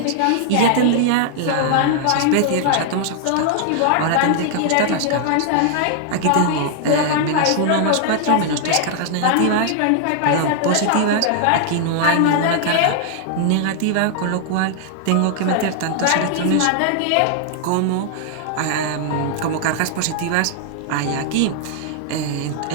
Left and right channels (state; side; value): different; both; correlation -0.01